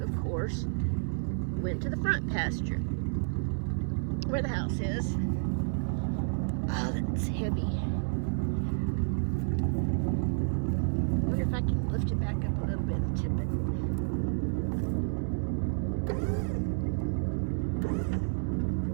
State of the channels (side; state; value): left; silent; digital silence